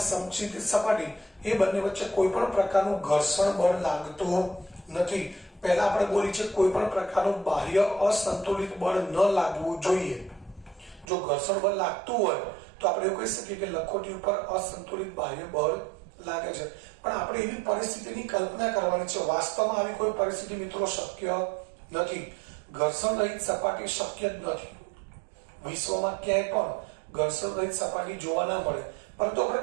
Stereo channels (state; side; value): drops out; left; at 11.1 s